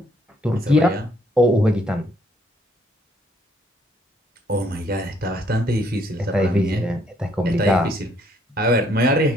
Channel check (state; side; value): normal; both; correlation 0.67